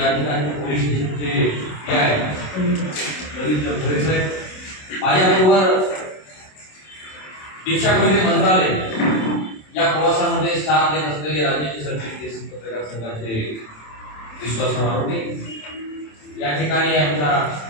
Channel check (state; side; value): late; right; 27 ms